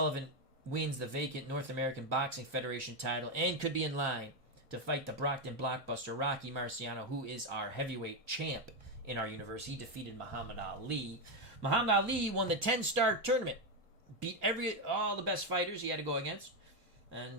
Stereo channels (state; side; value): late; left; 1.6 ms